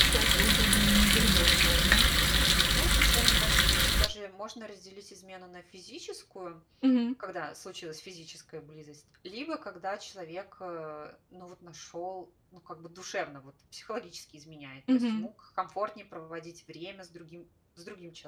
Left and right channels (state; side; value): identical; both; correlation 1.00